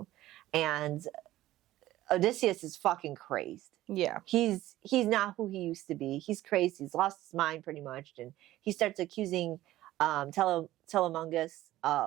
and Odysseus is fucking crazed. Yeah. He's not who he used to be. He's crazed. He's lost his mind pretty much. And he starts accusing Telegonus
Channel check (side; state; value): left; quieter; 15.3 dB